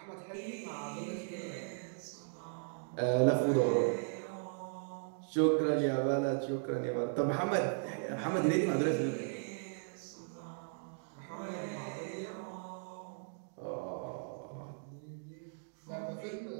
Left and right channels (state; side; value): silent; left; digital silence